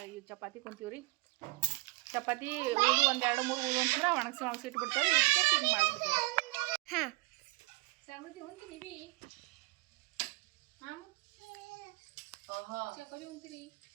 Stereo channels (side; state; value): left; quieter; 23.8 dB